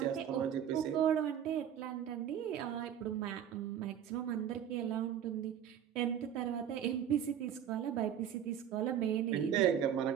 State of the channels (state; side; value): quieter; left; 9.5 dB